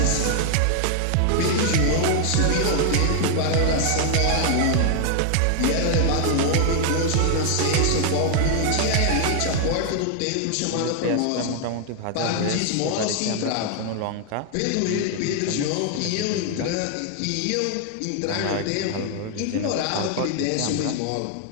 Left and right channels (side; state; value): both; different; correlation 0.00